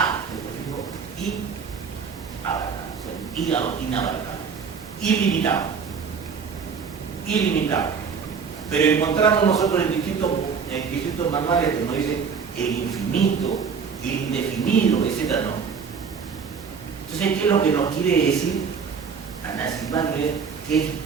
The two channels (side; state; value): left; quieter; 6.1 dB